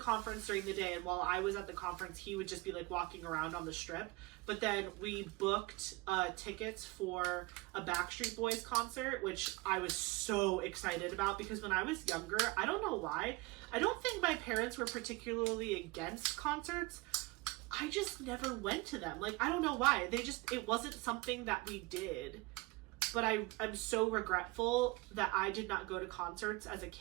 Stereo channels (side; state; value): left; quieter; 23.9 dB